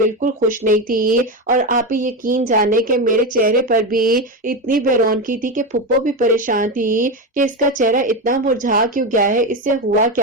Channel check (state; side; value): normal; both; correlation 0.15